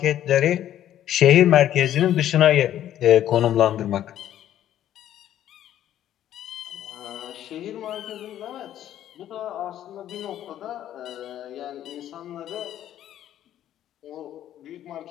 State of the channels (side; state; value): right; quieter; 11.7 dB